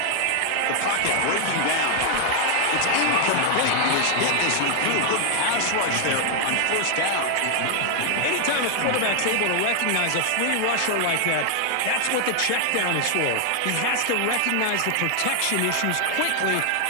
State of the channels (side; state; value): both; different; correlation 0.00